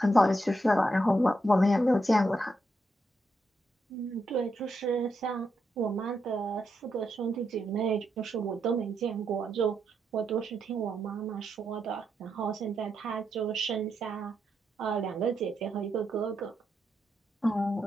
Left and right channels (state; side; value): normal; both; correlation 0.82